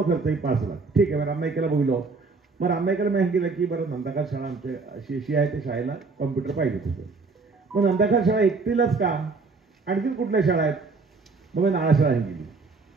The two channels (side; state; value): left; quieter; 4.1 dB